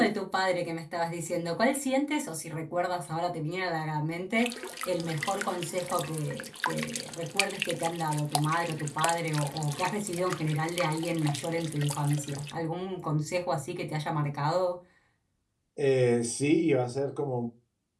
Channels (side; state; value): both; identical; correlation 1.00